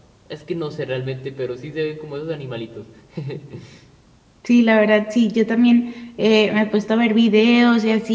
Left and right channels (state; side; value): identical; both; correlation 1.00